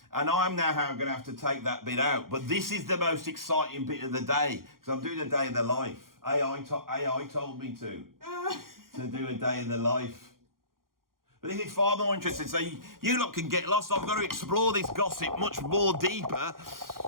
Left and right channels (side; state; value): left; late; 0.92 ms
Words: and I'm now going to have to take that bit out. But this is the most exciting bit of the day, because I'm doing a day in the life. AI told me to do a day in the life. But this is far more interesting, so you lot can get lost. I've got to explore this gossip much more deeper.